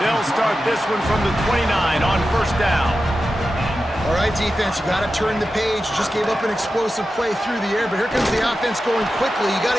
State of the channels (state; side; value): normal; both; correlation 0.92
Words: They'll start this one from the 29 on first down. All right, defense, you got to turn the page. You just gave up an explosive play through the air, but here comes the offense going quickly. You got